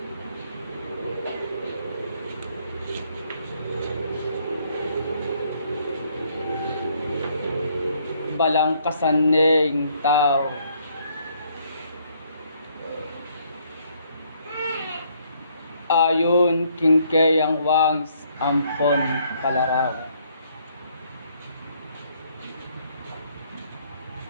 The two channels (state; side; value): inverted; both; correlation -0.68